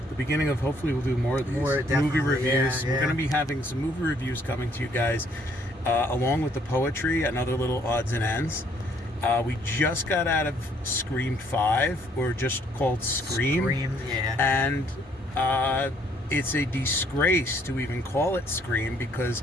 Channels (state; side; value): normal; both; correlation 0.65